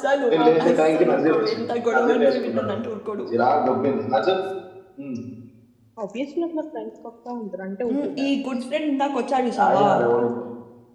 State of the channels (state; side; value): identical; both; correlation 1.00